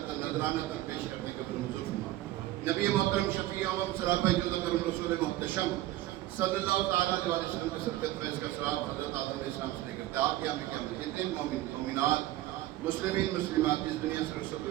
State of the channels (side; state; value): left; quieter; 15.6 dB